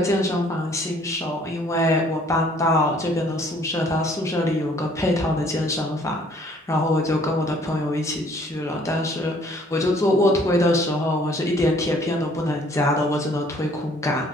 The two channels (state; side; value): normal; both; correlation 0.59